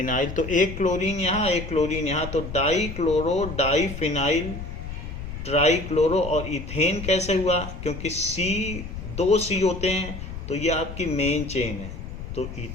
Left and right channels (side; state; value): left; noise; rumble, 9 dB below the sound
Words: तो एक क्लोरीन यहाँ एक क्लोरीन यहाँ, तो डाईक्लोरो डाईफिनाइल ट्राईक्लोरो। और इथेन कैसे हुआ? क्योंकि दो C होते हैं तो ये आपकी मेन चेन है, तो